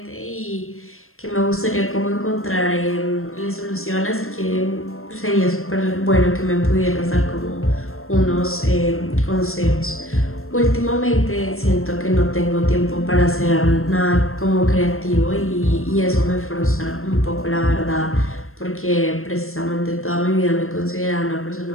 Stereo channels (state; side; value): late; right; 0.62 ms